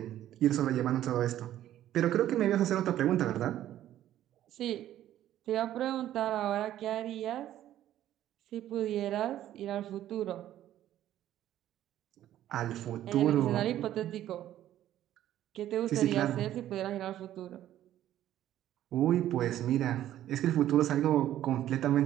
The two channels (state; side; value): quieter; left; 12.5 dB